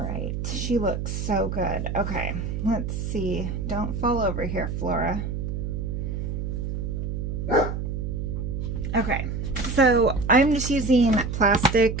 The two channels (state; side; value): noise; right; hum, 3 dB below the sound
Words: right, she looks so good. Okay, let's see. Don't fall over here, Flora. Okay, so I'm just using